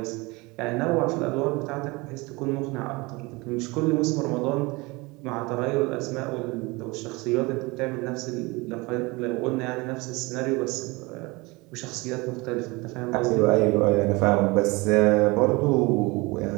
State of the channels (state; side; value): quieter; left; 24.6 dB